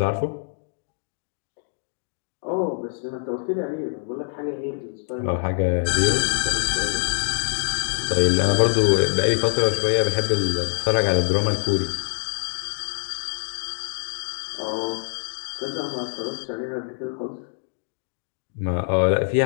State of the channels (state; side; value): silent; right; digital silence